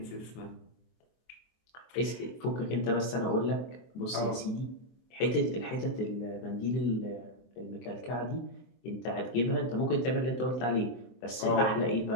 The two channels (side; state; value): right; late; 23 ms